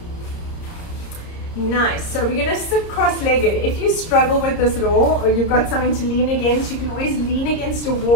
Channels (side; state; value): right; late; 30 ms